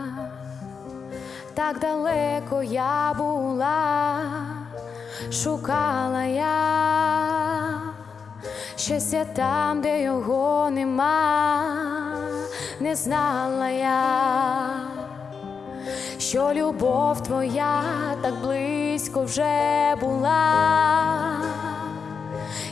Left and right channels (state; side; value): quieter; right; 5.9 dB